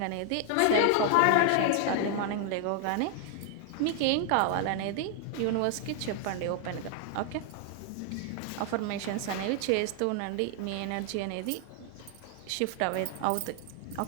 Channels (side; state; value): both; different; correlation 0.00